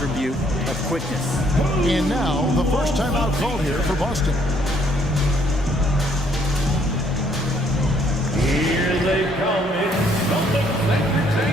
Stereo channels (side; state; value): both; normal; correlation 0.66